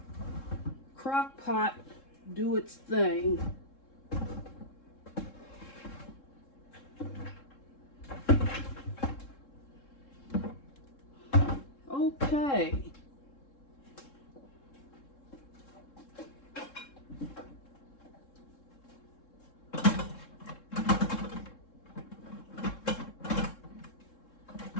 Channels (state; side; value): late; right; 3.7 ms